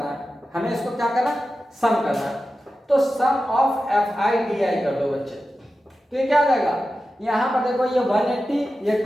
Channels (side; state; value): both; normal; correlation 0.92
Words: है, हमें इसको क्या करना है सम करना है। तो sum of F i d i कर दो बच्चे, तो ये क्या आ जाएगा, यहाँ पर देखो ये 180, ये